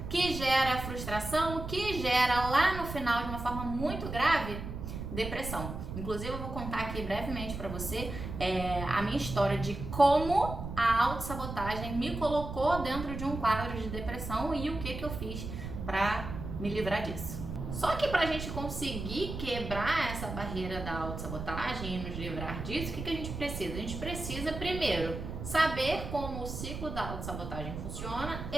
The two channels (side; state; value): right; noise; rumble, 7 dB below the sound